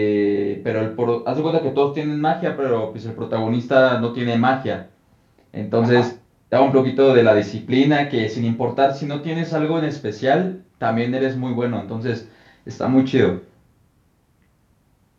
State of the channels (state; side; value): identical; both; correlation 1.00